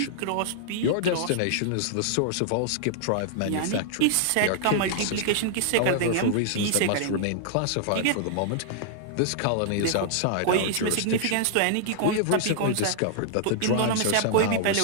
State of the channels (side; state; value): both; different; correlation -0.01